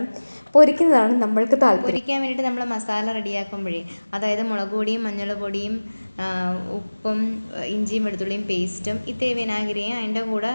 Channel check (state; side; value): inverted; both; correlation -1.00